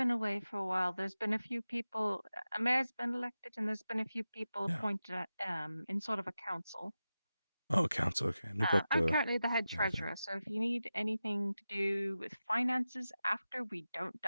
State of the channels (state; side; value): inverted; both; correlation -0.93